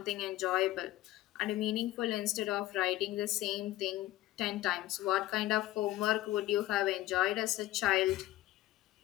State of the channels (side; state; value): right; quieter; 15.9 dB